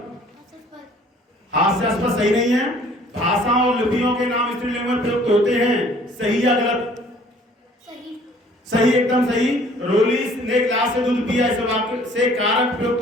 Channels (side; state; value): both; normal; correlation 0.55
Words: हास्यास्पद सही नहीं है। भाषा और लिपियों के नाम स्त्रीलिंग में प्रयुक्त होते हैं, सही या गलत? सही। सही, एकदम सही। रोली ने गिलास से दूध पिया, इस वाक्य से कारक